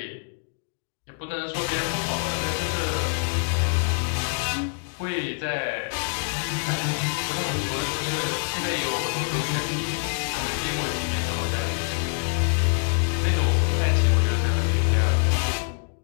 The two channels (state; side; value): silent; right; 55 dB below the other